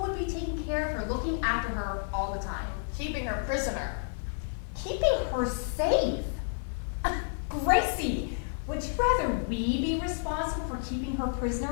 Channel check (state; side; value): silent; right; 58 dB below the other